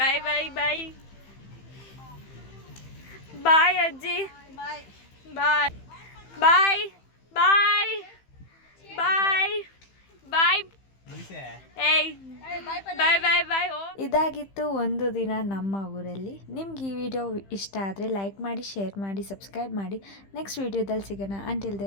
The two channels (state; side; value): late; right; 15 ms